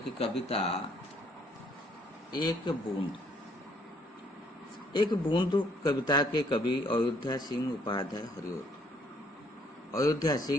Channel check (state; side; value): normal; both; correlation 0.65